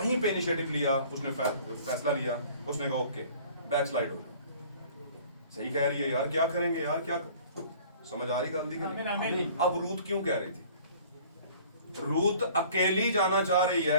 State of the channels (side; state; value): both; inverted; correlation -0.50